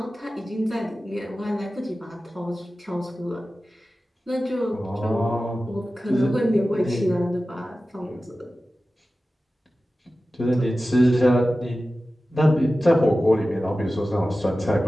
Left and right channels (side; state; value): both; normal; correlation 0.95